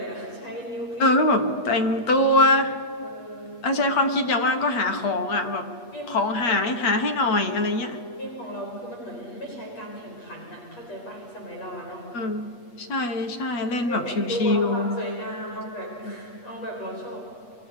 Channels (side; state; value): right; late; 8.4 ms